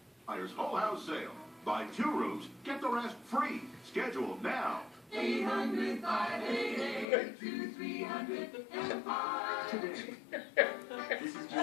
Buyer's Whole House Sale. Buy 2 rooms, get the rest free. Schedule now. 800-588-2300 Empire. This is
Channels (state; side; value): drops out; right; at 7.1 s